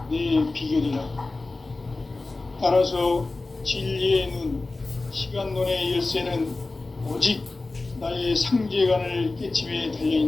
내 비결이라. 따라서 진리의 눈, 시간론의 열쇠는 오직 나의 상제관을 깨침에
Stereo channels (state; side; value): quieter; right; 3.3 dB